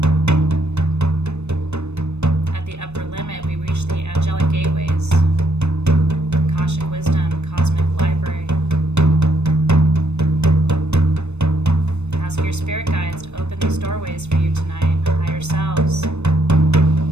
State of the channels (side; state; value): left; late; 0.81 ms